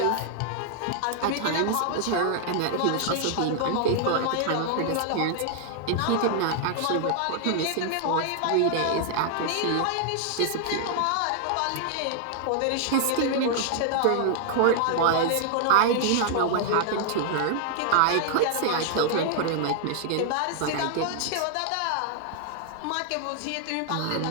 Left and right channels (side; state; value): both; different; correlation 0.00